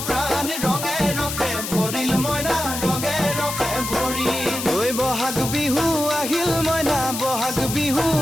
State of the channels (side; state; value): left; noise; hiss, 6 dB below the sound